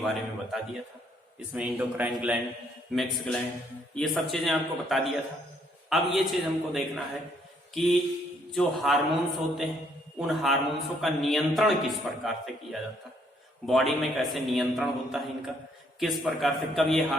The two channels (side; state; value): both; normal; correlation 0.68